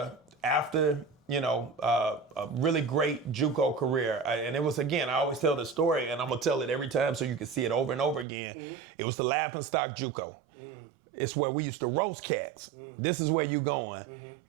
after, a really great JUCO career. And it was, again, I always tell the story, and I'm going to tell it every time so you can see it over and over again. It was the laughingstock JUCO. It's where we used to roast cats. This is where you going.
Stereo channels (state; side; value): drops out; left; at 8.2 s